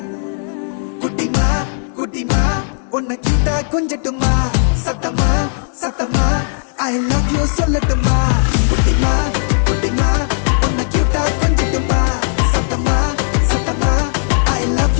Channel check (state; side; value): silent; right; digital silence